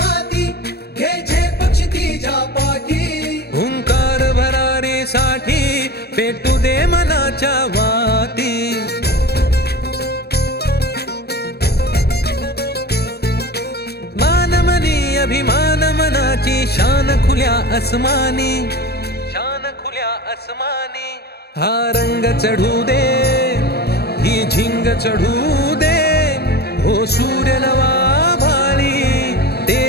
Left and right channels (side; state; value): right; late; 0.47 ms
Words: माती घे झेप क्षितिजा पाठी हुंकार भरारीसाठी पेटू दे मनाच्या वाती मानमनी अभिमान मनाची शान खुल्या आसमानी शान खुल्या आसमानी हा रंग चढू दे ही झिंग चढू दे हो सूर्य नवा भाळी